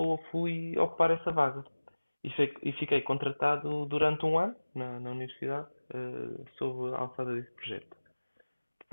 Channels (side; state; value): both; inverted; correlation -1.00